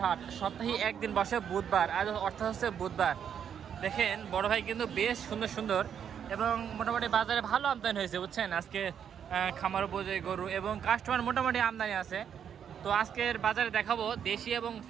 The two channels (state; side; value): quieter; left; 8.3 dB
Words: হাট। সপ্তাহে একদিন বসে বুধবার, আজ অর্থাৎ হচ্ছে বুধবার। দেখেন বড় ভাই কিন্তু বেশ সুন্দর সুন্দর এবং মোটামুটি বাজারে ভালো আমদানি হয়েছে, বুঝছেন? আজকে খামার উপযোগী গরু এবং কাস্টমার মোটামুটি আমদানি আছে। তো আজকের বাজারে দেখাবো দেশি এবং